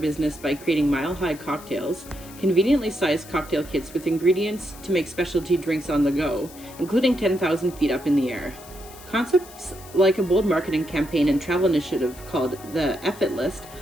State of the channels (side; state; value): left; noise; hiss, 19 dB below the sound